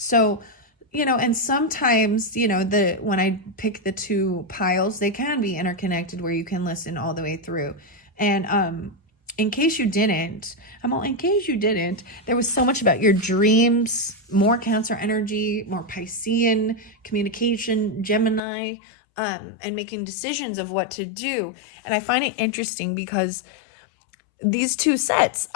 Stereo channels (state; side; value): drops out; right; at 18.4 s